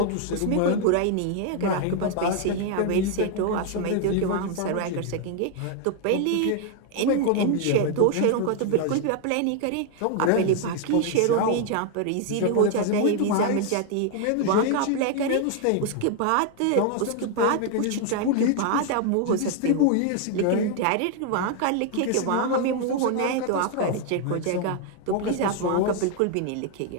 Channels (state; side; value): different; both; correlation 0.00